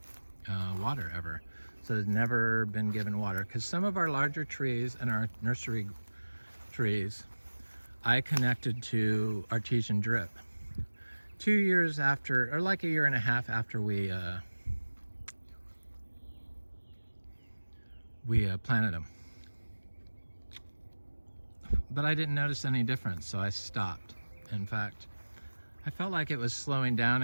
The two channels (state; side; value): inverted; both; correlation -1.00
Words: water ever. So it's never been given water. Because some of our larger trees and our nursery trees, I connected to artesian drip 2 years after, or like a year and a half after we planted them. But I didn't notice any difference, so I stopped. In fact, I felt like it was slowing down